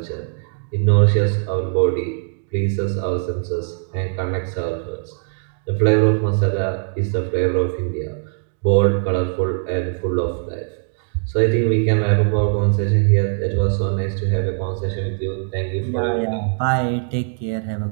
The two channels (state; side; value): silent; left; 64 dB below the other